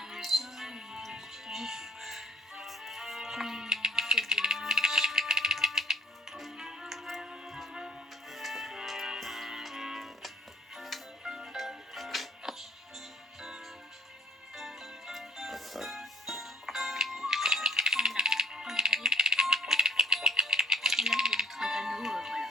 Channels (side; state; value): both; normal; correlation 0.56